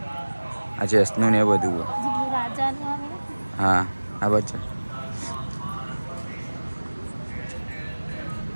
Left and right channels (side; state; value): both; inverted; correlation -1.00